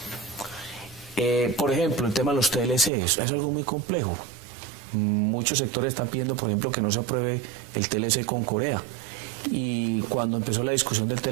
Por ejemplo, el tema de los TLC es algo muy complejo. Muchos sectores están pidiendo, por ejemplo, que no se apruebe el TLC con Corea. Y cuando empezó la discusión del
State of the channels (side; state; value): left; drops out; at 2.9 s